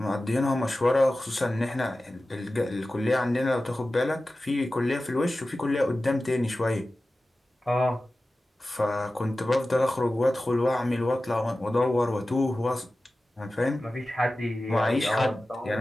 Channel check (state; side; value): normal; both; correlation 0.95